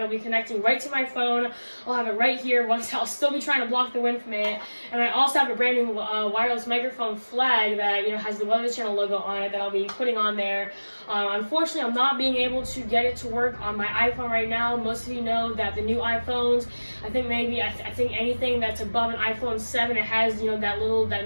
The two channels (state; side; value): inverted; both; correlation -1.00